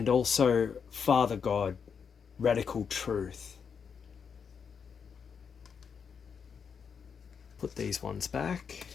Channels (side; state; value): right; quieter; 6.5 dB